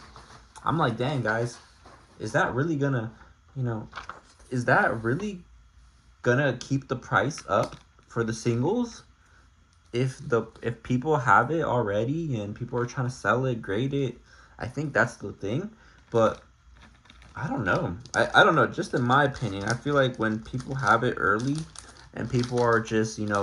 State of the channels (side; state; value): both; identical; correlation 1.00